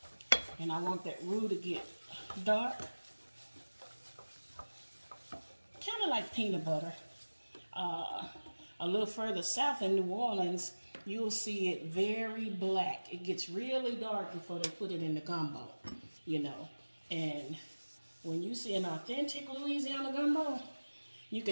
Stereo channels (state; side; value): inverted; both; correlation -1.00